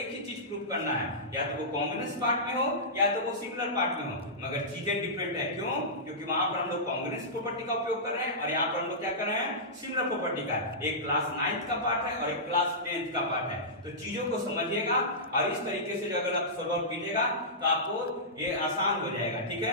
ही चीज प्रूव करना है, या तो वो कांग्रुएंस पार्ट में हो या तो वो सिमिलर पार्ट में हो, मगर चीजें डिफरेंट है। क्यों, क्योंकि वहां पर हम लोग कांग्रुएंस प्रॉपर्टी का उपयोग कर रहे हैं और यहाँ पर हम लोग क्या कर रहे हैं, सिमिलर प्रॉपर्टी का। एक क्लास 9th का पार्ट है और एक क्लास 10th का पार्ट है। तो चीजों को समझिएगा और इस तरीके से अगर आप सॉल्व कीजिएगा तो आपको ये आसान हो जाएगा, ठीक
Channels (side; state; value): both; normal; correlation -0.16